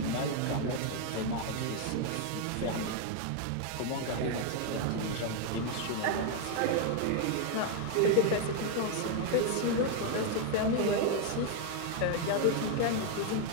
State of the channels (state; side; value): different; both; correlation 0.01